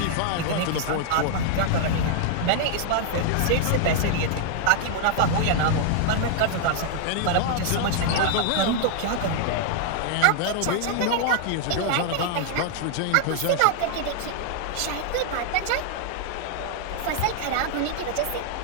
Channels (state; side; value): different; both; correlation -0.01